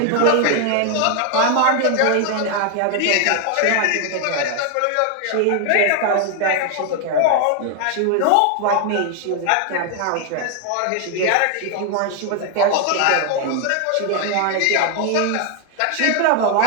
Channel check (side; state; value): both; different; correlation 0.01